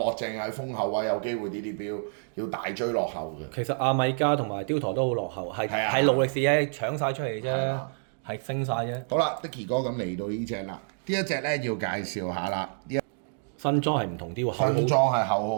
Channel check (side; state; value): left; silent; digital silence